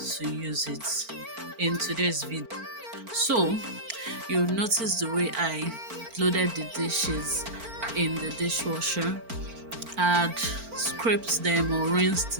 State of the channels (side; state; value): left; late; 4.4 ms